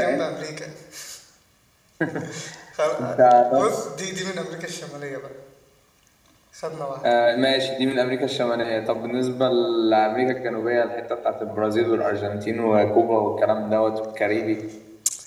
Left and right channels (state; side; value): identical; both; correlation 1.00